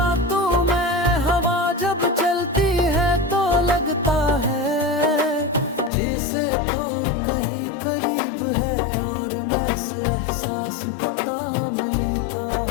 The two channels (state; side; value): drops out; right; at 5.9 s